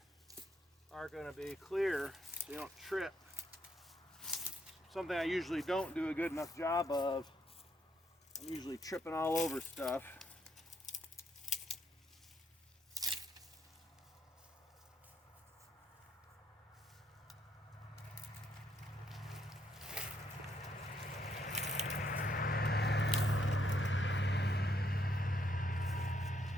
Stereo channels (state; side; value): normal; both; correlation 0.74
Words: are going to be clear so you don't trip. Something I usually don't do a good enough job of. I'm usually tripping all over stuff.